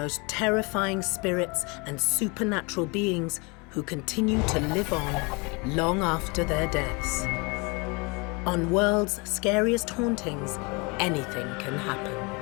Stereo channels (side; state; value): right; quieter; 28.9 dB